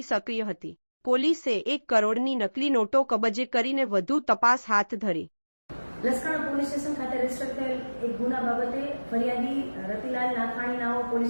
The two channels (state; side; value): inverted; both; correlation -1.00